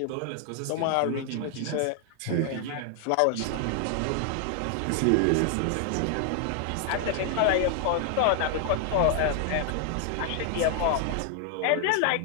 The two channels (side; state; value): both; different; correlation 0.00